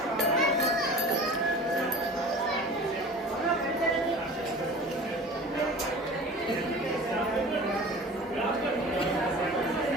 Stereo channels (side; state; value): both; normal; correlation 0.39